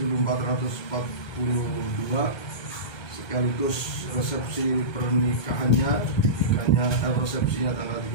sekaligus resepsi pernikahannya, resepsinya tanggal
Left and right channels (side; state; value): right; late; 1.3 ms